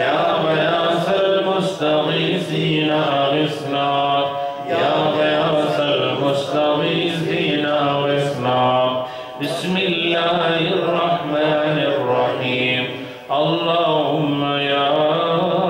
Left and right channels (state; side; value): identical; both; correlation 1.00